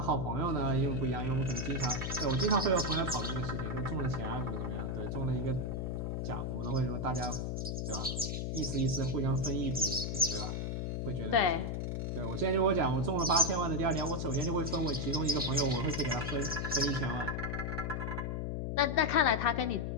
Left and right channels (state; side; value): noise; left; hum, 2 dB below the sound